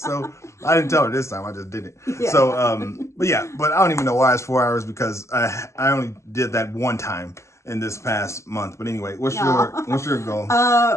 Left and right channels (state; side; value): late; right; 0.14 ms